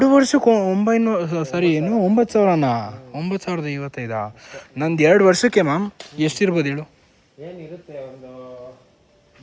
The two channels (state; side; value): identical; both; correlation 1.00